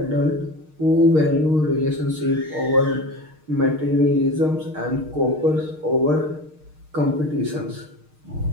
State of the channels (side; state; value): left; late; 6.5 ms